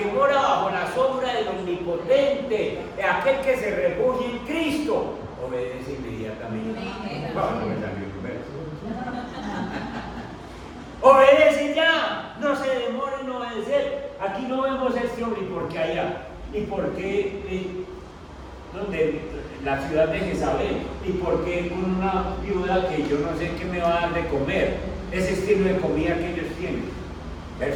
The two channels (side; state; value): both; identical; correlation 1.00